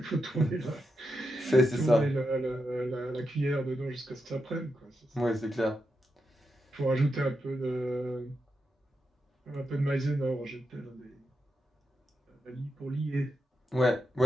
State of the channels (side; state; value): both; normal; correlation 0.86